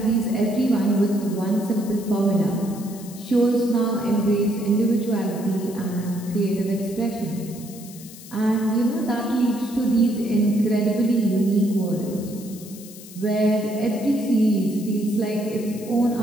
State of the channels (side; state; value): left; noise; hiss, 17 dB below the sound